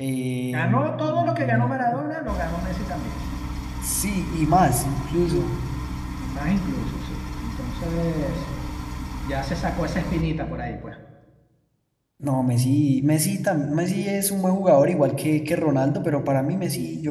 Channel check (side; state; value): both; identical; correlation 1.00